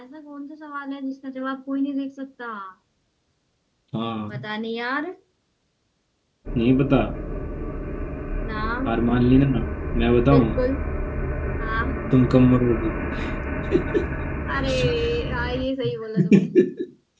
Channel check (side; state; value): both; identical; correlation 1.00